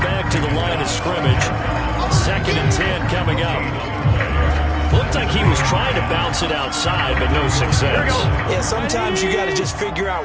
back to the line of scrimmage. 2nd and 10 coming up. Looked like he was trying to bounce it outside, but no success. Yeah, sometimes you got to just figure out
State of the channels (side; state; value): both; identical; correlation 1.00